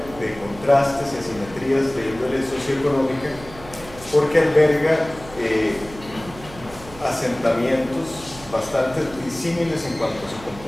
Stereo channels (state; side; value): noise; right; hum, 18 dB below the sound